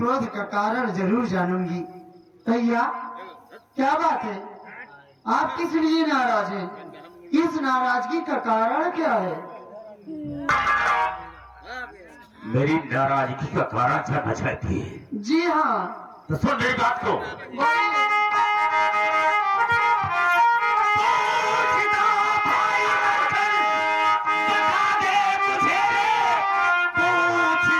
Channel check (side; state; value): both; identical; correlation 1.00